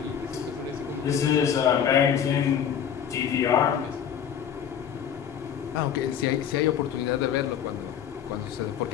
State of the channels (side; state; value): right; quieter; 8.7 dB